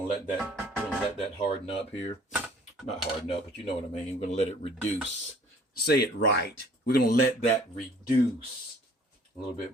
let that harden up here. Not harden up, but you know what I mean. We're gonna let it reduce. Say it right. We're gonna let that reduce a little bit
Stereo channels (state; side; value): normal; both; correlation 0.54